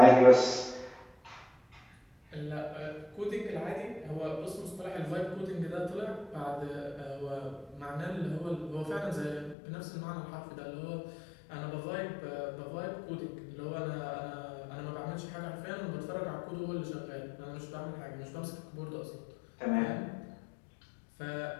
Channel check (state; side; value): drops out; right; at 9.6 s